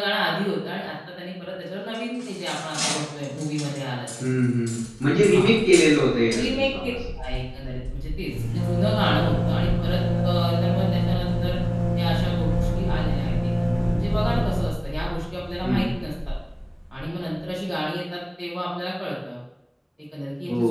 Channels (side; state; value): both; identical; correlation 1.00